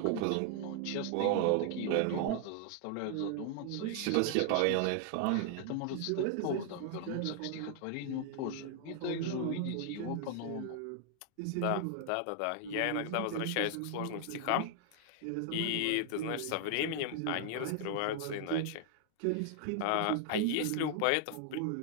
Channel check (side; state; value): both; different; correlation 0.00